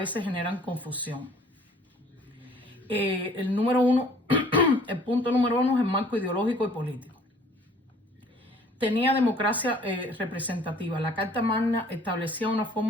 generan confusión. El punto número 1 es el marco ideológico y político. Tenía democracia representativa. La Carta Magna establecía una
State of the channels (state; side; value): normal; both; correlation 0.55